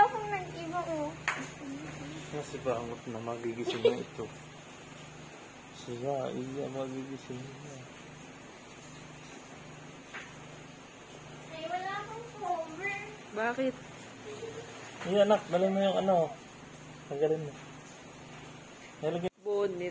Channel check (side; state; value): both; identical; correlation 1.00